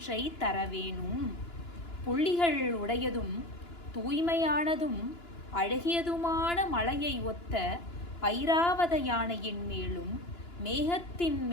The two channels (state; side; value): late; right; 2.9 ms